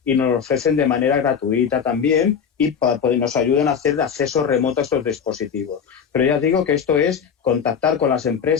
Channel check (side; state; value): right; quieter; 7.1 dB